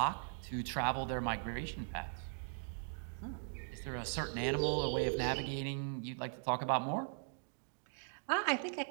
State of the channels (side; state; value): left; silent; digital silence